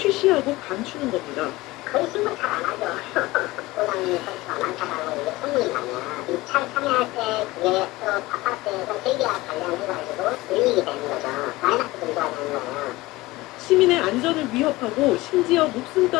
감추는 겁니다. 거의 신고 잘 안 하죠. 고장이 건수가 많다고 이게 소문이 나면 입찰 참여할 때 그게 또 아파트에서 설계와 관련해가지고 불이익이 되는 거죠. 마이너스 증가가 되는 거예요. 시민의 안전을 위협하고 심지어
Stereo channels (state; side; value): quieter; right; 19.8 dB